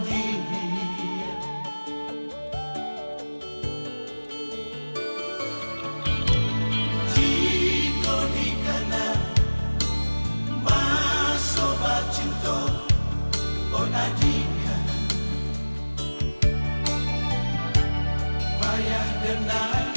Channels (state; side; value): inverted; both; correlation -1.00